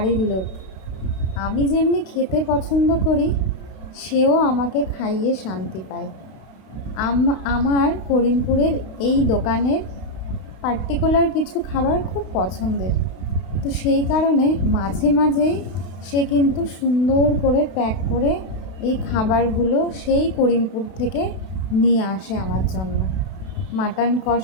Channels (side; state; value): right; late; 32 ms